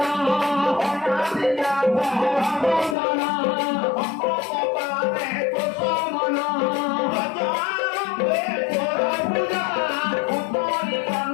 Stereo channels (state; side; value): drops out; right; at 3.0 s